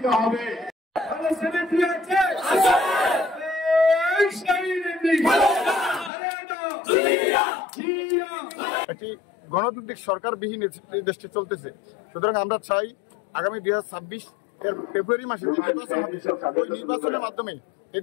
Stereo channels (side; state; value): right; drops out; at 6.1 s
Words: হবে। একটি গণতান্ত্রিক সরকারবিহীন দেশটি চলতেছে। সুতরাং আমরা চাই আগামী 2026 এর ফেব্রুয়ারি মাসে নির্বাচন হবে, ওই নির্বাচনের মাধ্যমে এই